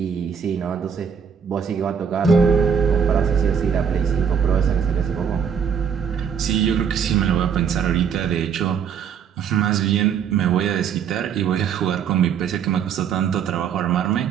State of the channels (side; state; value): left; quieter; 7.2 dB